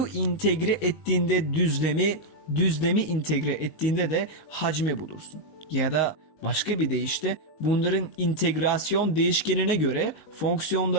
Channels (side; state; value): right; late; 19 ms